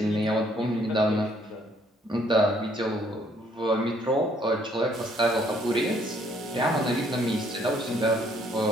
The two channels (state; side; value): normal; both; correlation 0.65